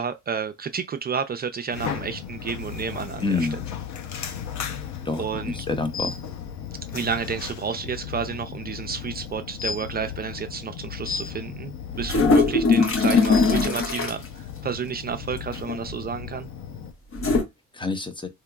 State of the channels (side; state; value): both; normal; correlation 0.42